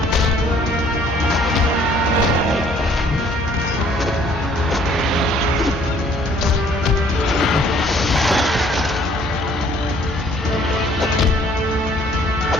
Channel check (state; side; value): normal; both; correlation 0.59